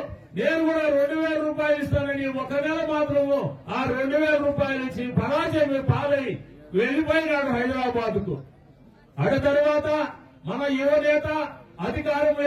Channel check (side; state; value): both; identical; correlation 1.00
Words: నేను కూడా 2000 రూపాయలు ఇస్తానని 1 నెల మాత్రము ఆ 2000 రూపాయలు ఇచ్చి పరాజయం పాలై వెళ్లిపోయినాడు హైదరాబాద్ కు. ఆ తర్వాత మన యువనేత